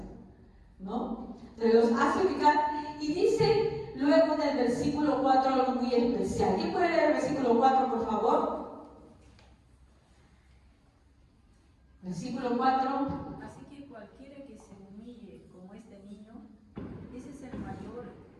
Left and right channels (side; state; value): both; identical; correlation 1.00